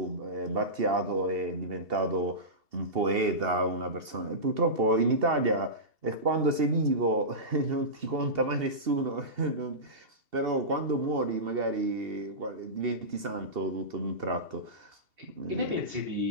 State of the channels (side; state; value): left; late; 2.8 ms